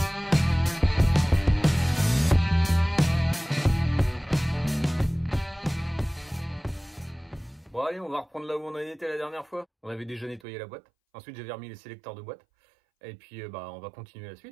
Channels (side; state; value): left; drops out; at 10.4 s